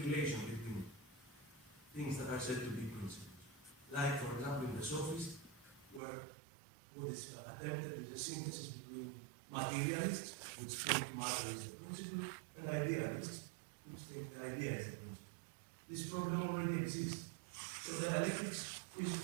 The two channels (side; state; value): left; drops out; at 6.0 s